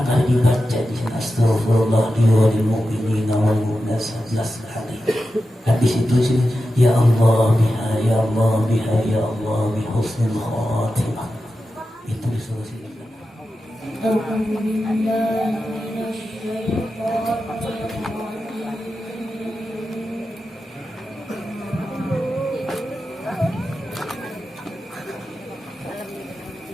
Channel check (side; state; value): both; normal; correlation 0.91